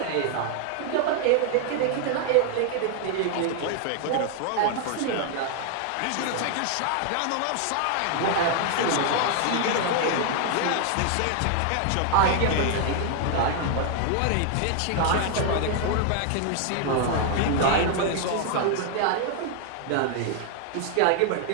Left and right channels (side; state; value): both; different; correlation 0.00